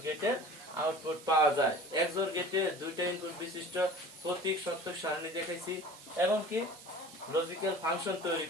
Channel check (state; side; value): noise; right; hiss, 18 dB below the sound